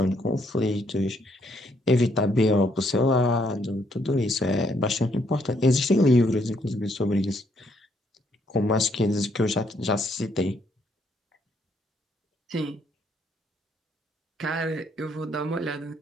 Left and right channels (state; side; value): normal; both; correlation 0.71